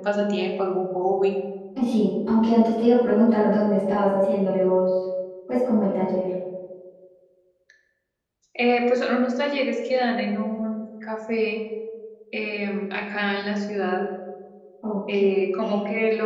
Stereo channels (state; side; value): identical; both; correlation 1.00